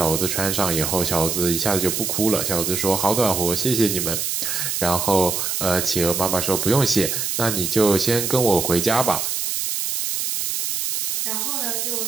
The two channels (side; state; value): right; noise; hiss, 1 dB below the sound